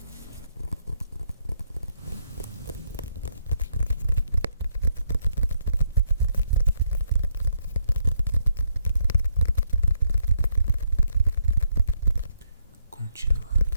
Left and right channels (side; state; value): both; inverted; correlation -0.74